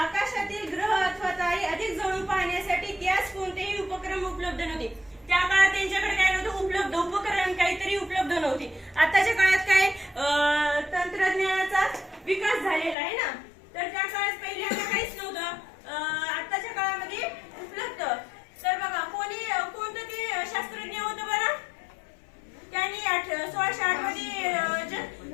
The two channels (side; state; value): right; drops out; at 13.0 s